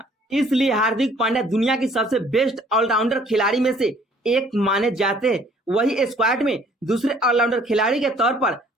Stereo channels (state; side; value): normal; both; correlation 0.58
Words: इसलिए हार्दिक पांड्या दुनिया की सबसे बेस्ट ऑलराउंडर खिलाड़ी में से एक माने जाते हैं। वही स्क्वाड में दूसरे ऑलराउंडर खिलाड़ी के तौर पर